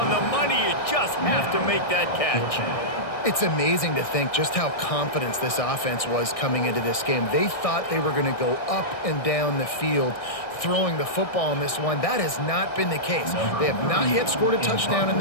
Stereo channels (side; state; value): right; late; 1.6 ms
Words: the money. You just have to make that catch. It's amazing to think just how confident this offense was coming into this game. They thought they were going to go up and down the field throwing the football in this one. That has not been the case. They have not yet scored a touchdown in